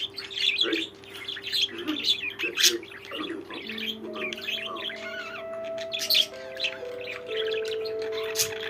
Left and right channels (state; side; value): identical; both; correlation 1.00